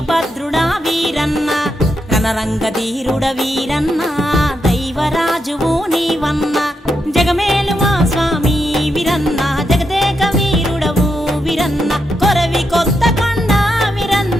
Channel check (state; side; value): normal; both; correlation 0.83